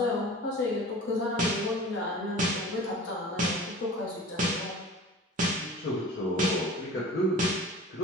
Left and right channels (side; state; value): both; normal; correlation 0.39